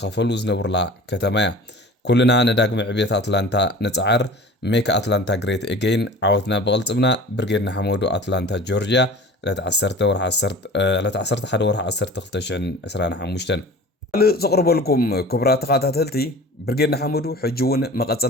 زنبرلا كتمايا كلنا نداق معبيت أتلانتا نتعر ميك أتلانتا جريت إجين عوتنا بغلطبنا برجيرنا حمودو أتلانتا جورجيا لا تعسرت حد ورح عسرت خلتشن أسرانا حموشتن زقرب لكم كبرات قاتلتي برجيرنا حمودو حجون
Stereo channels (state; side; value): normal; both; correlation 0.41